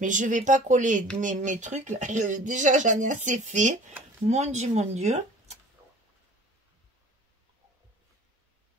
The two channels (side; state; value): both; normal; correlation 0.47